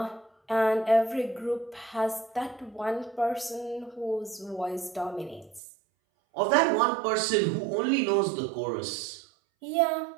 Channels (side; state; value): left; drops out; at 5.6 s